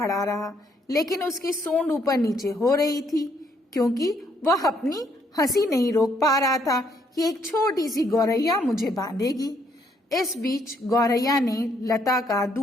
रहा। लेकिन उसकी सूंड ऊपर नीचे हो रही थी, क्योंकि वह अपनी हंसी नहीं रोक पा रहा था कि एक छोटी सी गौरैया मुझे बांधेगी। इस बीच गौरैया ने लता का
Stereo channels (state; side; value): normal; both; correlation 0.70